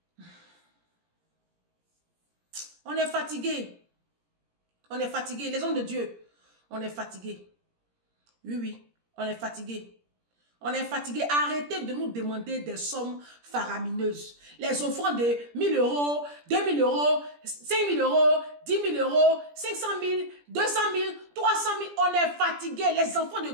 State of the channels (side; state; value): left; late; 17 ms